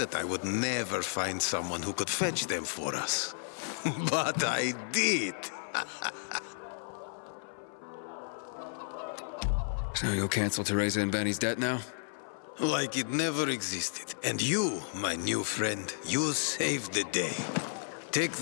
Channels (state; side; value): silent; right; 56 dB below the other